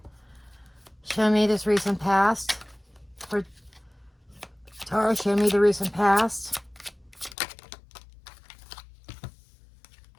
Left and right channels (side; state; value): right; drops out; at 7.4 s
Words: Show me this recent past. For Taurus, show me the recent past.